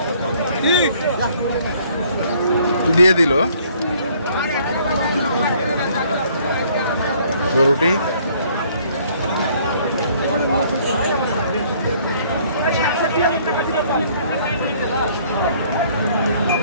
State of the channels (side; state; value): both; inverted; correlation -0.60